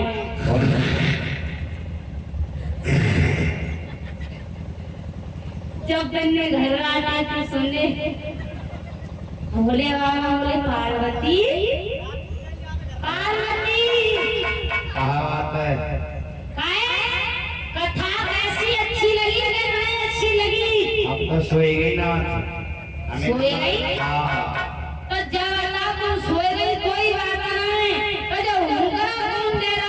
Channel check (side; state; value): both; identical; correlation 1.00